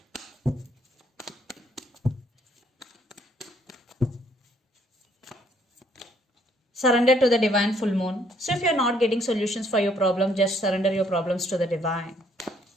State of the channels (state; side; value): normal; both; correlation 0.66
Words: Surrender to the divine full moon. So if you're not getting solutions for your problem, just surrender your problems to the divine.